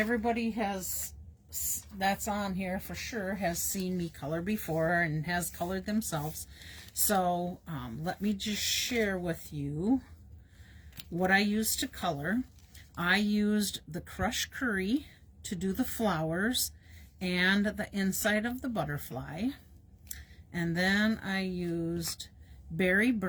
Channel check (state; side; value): identical; both; correlation 1.00